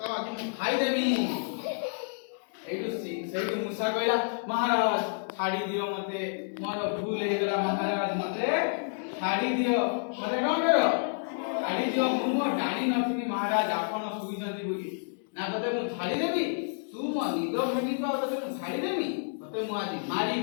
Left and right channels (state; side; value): silent; right; digital silence